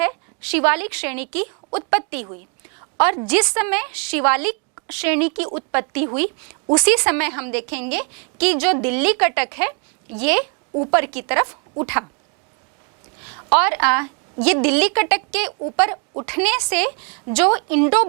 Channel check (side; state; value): left; quieter; 37.2 dB